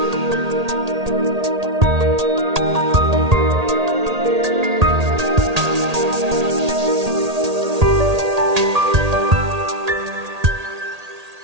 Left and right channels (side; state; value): left; late; 1.8 ms